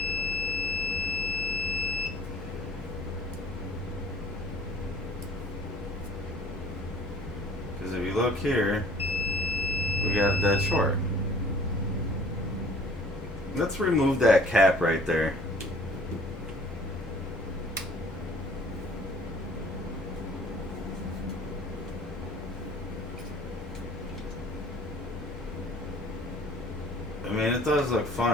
Because if you look here, we got a dead short. Let's remove that cap right there. I mean, it does look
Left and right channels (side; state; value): both; normal; correlation 0.52